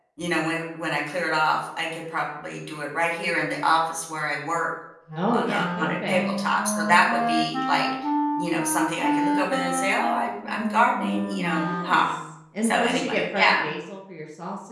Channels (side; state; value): both; identical; correlation 1.00